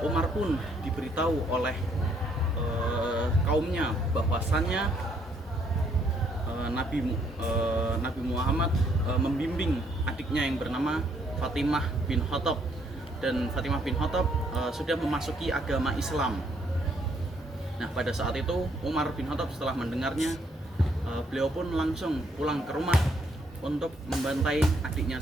Umar pun diberitahu oleh kaumnya bahwasannya Nabi Muhammad membimbing adiknya yang bernama Fatimah bin Khattab, dan Fatimah bin Khattab sudah memasuki agama Islam. Nah, pada saat itu Umar bin Khattab setelah mendengarnya, beliau pun langsung pulang ke rumah untuk membantai adiknya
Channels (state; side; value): normal; both; correlation 0.69